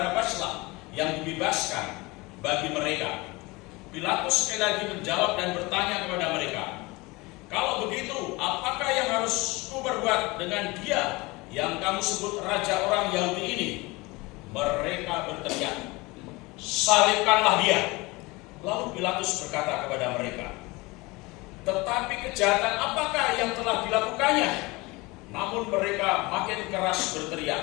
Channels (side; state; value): right; quieter; 23.6 dB